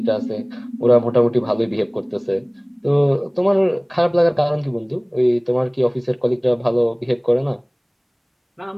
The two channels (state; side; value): identical; both; correlation 1.00